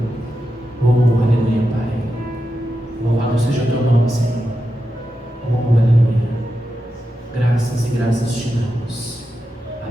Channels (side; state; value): both; normal; correlation 0.89